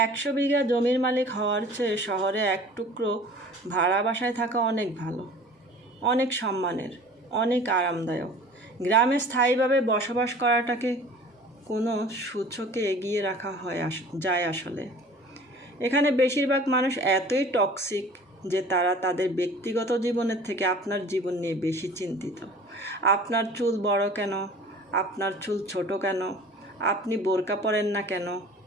100 বিঘা জমির মালিক হওয়ার চেয়ে শহরে এক টুকরো ভাড়া বাসায় থাকা অনেক ভালো, অনেক সম্মানের, অনেক আরামদায়ক। গ্রামে স্থায়ীভাবে বসবাস করাটাকে কোনো সূচকে এগিয়ে রাখা যায় আসলে। এখানে বেশিরভাগ মানুষ এতই টক্সিক যে তারা তাদের ব্যক্তিগত জীবনের থেকে আপনার জীবন নিয়ে বেশি চিন্তিত। আপনার চুল বড় কেন, আপনার চুল ছোট কেন, আপনি বোরকা পরেন না কেন,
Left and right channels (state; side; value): normal; both; correlation 0.45